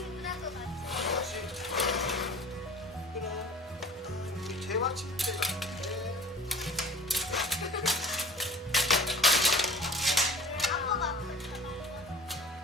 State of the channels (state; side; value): normal; both; correlation 0.44